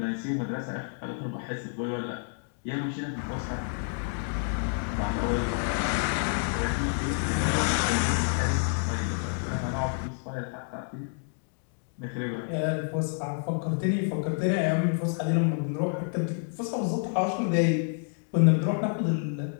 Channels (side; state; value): right; silent; 59 dB below the other